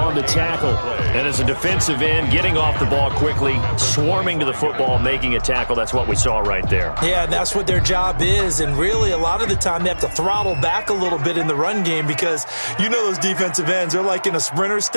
the tackle. And as a defensive end, getting off the ball quickly, swarming to the football, making a tackle. That's what we saw right there. Yeah, and that's what their job is. And really, a lot of the time, they have to throttle back a little bit in the run game because you know those defensive ends, they're like in a sprinter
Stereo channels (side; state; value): both; inverted; correlation -1.00